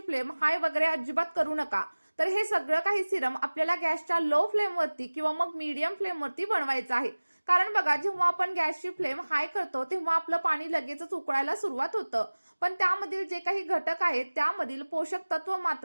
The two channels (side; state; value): both; inverted; correlation -1.00